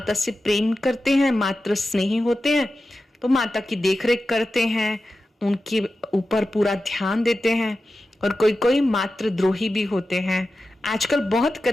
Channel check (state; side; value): normal; both; correlation 0.92